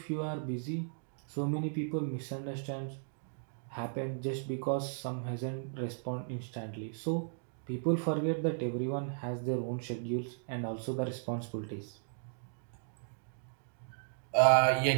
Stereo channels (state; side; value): silent; left; digital silence